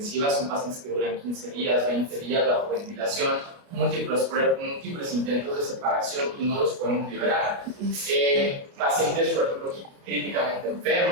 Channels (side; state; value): left; late; 30 ms